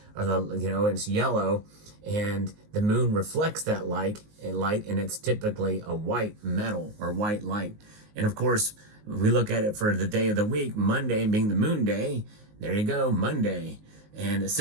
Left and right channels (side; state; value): left; late; 19 ms